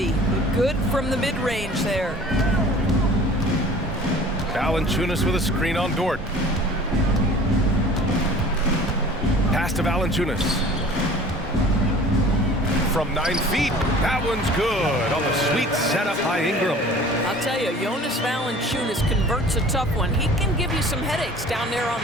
Good from the mid-range there. Valanciunas with a screen on Dort. Pass to Valanciunas. From 9 feet, that one's good on the sweet setup by Ingram. I'll tell you, Jonas Valanciunas converts a tough one. He can give you some headaches down there on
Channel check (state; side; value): normal; both; correlation 0.46